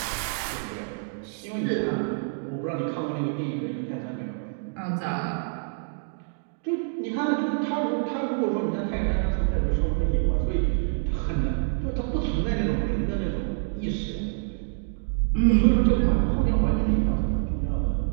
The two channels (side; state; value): left; silent; digital silence